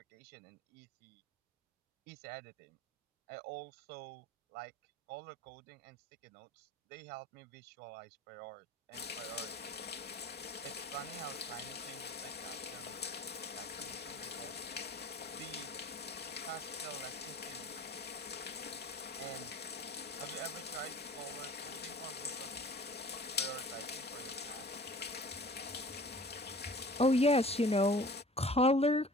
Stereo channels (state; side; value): normal; both; correlation 0.45